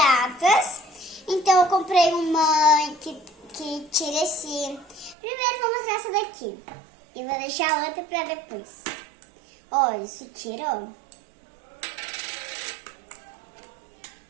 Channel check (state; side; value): drops out; left; at 5.2 s